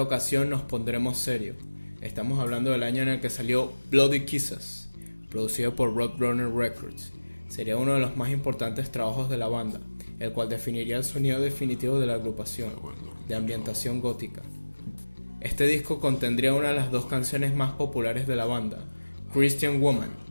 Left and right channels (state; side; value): inverted; both; correlation -1.00